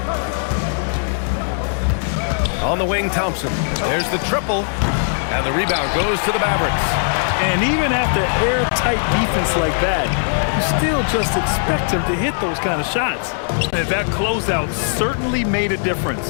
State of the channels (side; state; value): right; silent; digital silence